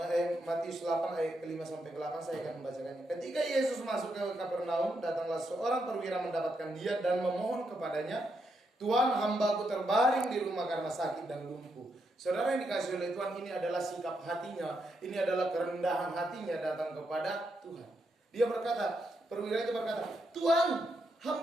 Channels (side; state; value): both; normal; correlation 0.81